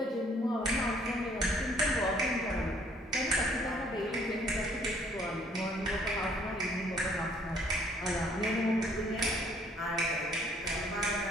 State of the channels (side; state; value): both; normal; correlation 0.62